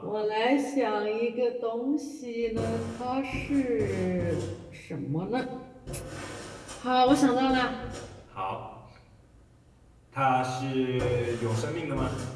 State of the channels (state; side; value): identical; both; correlation 1.00